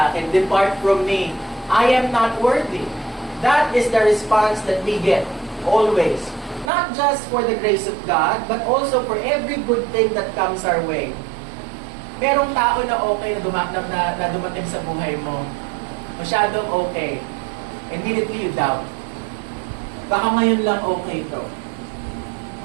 akin, depart from me, I am not worthy. That is the response that we get, always. Not just for the grace of God, but also for every good thing that comes our way. Merong tao na okay na dumating sa buhay mo. Masyadong okay. Immediately you doubt. Baka ngayon lang okay to.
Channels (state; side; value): drops out; left; at 6.7 s